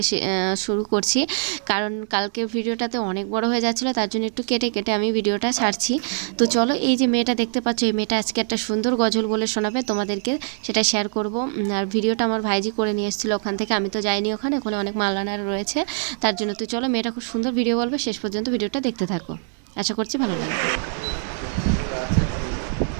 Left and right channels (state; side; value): silent; left; 60 dB below the other